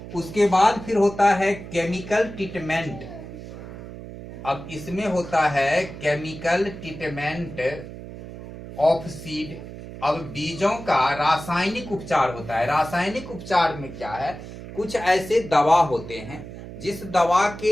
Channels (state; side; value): noise; right; hum, 12 dB below the sound